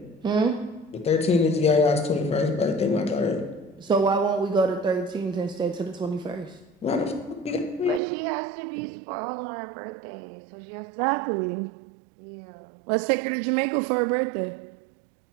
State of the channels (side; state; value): left; drops out; at 8.0 s